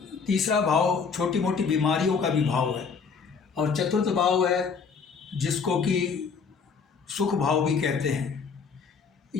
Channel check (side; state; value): right; quieter; 5.6 dB